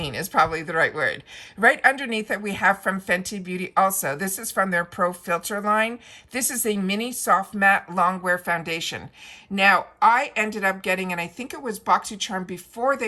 is probably the right word. Right underneath it, we have from Fenty Beauty also. This is from their Pro Filter line. This is a mini soft matte longwear foundation. Now, I ended up getting, and I think it was BoxyCharm before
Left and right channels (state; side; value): identical; both; correlation 1.00